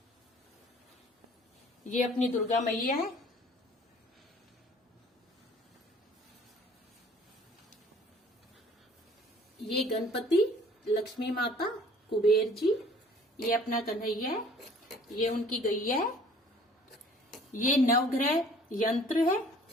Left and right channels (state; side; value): normal; both; correlation 0.53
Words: ये अपनी दुर्गा मैया है। ये गणपति, लक्ष्मी माता, कुबेर जी। ये अपना कन्हैया है। ये उनकी गैया है। ये नवग्रह यंत्र है।